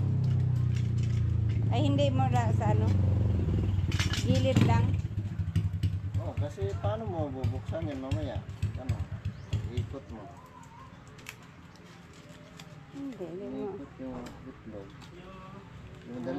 Ay hindi mo na sa gilid lang. Oh, Kasi paano mo bubuksan yan mamaya? Ano? Ikot mo. Hindi mo. Ikot yung itlog.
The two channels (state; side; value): identical; both; correlation 1.00